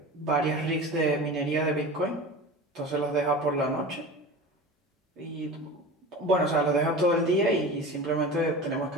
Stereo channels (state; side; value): normal; both; correlation 0.33